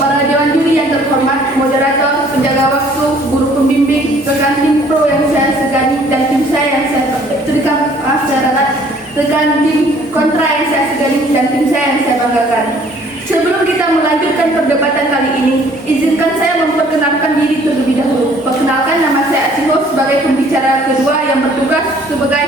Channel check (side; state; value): both; normal; correlation 0.58